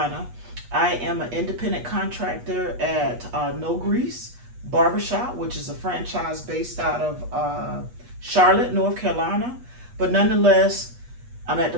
I am an independent contractor at No Grease Barbershop, which is a franchise based out of Charlotte, North Carolina. But nonetheless, I'm at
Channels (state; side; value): late; left; 8.3 ms